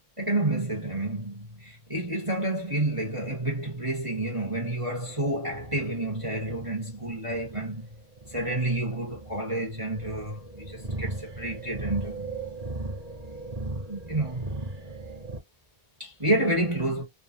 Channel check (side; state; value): left; late; 1.5 ms